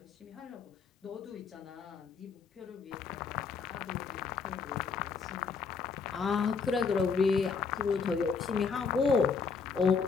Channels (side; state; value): right; quieter; 5.3 dB